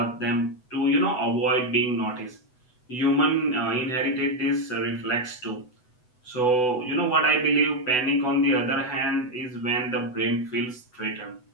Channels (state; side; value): late; right; 8.0 ms